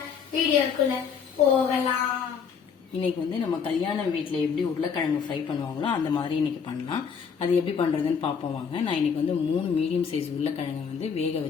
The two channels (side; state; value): right; quieter; 6.6 dB